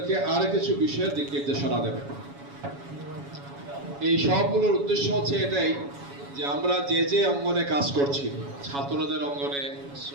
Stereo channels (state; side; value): late; left; 7.2 ms